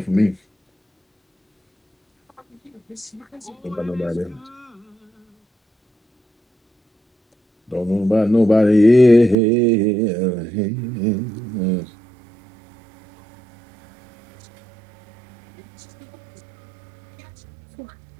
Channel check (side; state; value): left; drops out; at 9.3 s